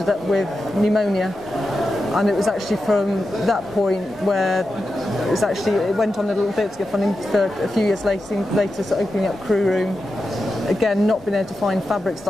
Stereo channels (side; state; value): both; normal; correlation 0.90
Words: up with pneumonia. And it was actually from that point where it went on a little bit to get funding for a few years later so opening up Crewroom. Again, not being able to find fabrics